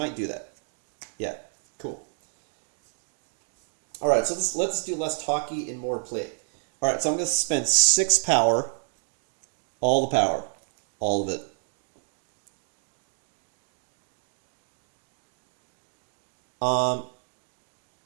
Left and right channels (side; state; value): left; silent; 59 dB below the other